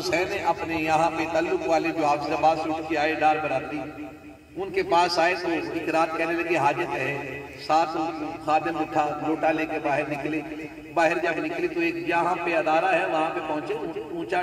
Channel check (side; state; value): both; identical; correlation 1.00